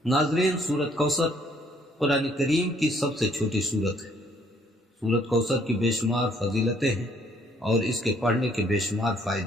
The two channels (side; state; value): both; normal; correlation 0.65